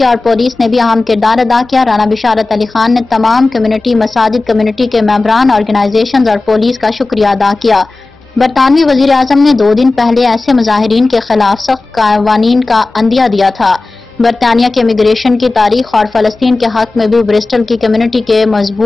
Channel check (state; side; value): quieter; right; 3.3 dB